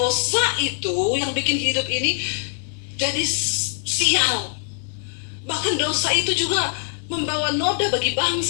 itu yang bikin hidup ini jadi sial. Bahkan dosa itu juga membawa noda bagi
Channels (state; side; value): silent; right; 64 dB below the other